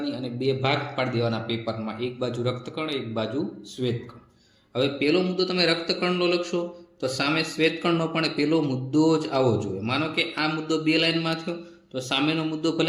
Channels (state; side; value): identical; both; correlation 1.00